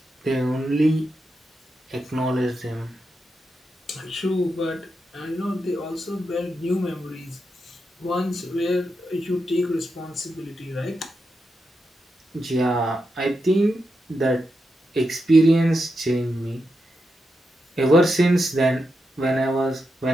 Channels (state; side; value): normal; both; correlation 0.86